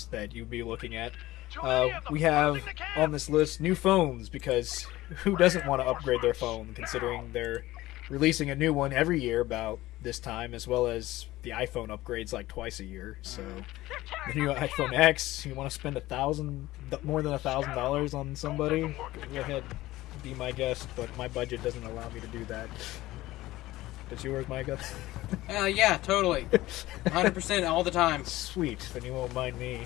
that you'd be looking at, we have on this list new phones, because who doesn't want to upgrade their phone, considering they're releasing a new one every year about this time, as well as the iPhone upgrades like twice a year. So the new iPhone X, you want to spend more than $1,000 on somebody, go ahead, be my guest, but my budget doesn't allow me to do that. Does yours, Micah? Yeah, totally. 100% all the time. Sweet, then you won't mind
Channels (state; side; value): quieter; right; 17.2 dB